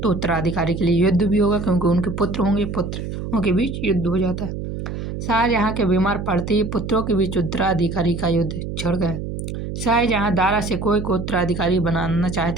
तो उत्तराधिकारी के लिए युद्ध भी होगा, क्योंकि उनके पुत्र होंगे, पुत्रों के बीच युद्ध हो जाता है। शाहजहाँ के बीमार पड़ते ही पुत्रों के बीच उत्तराधिकारी का युद्ध छिड़ गया। शाहजहाँ दारा शिकोह को उत्तराधिकारी बनाना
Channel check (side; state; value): right; noise; hum, 6 dB below the sound